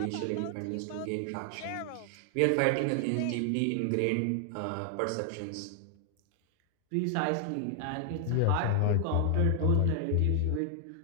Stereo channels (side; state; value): both; different; correlation 0.00